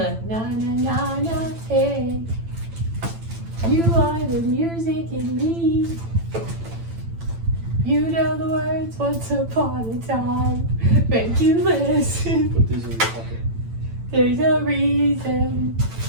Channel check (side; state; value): left; late; 8.9 ms